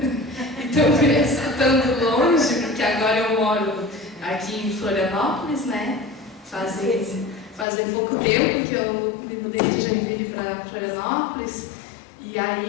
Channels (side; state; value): right; drops out; at 7.7 s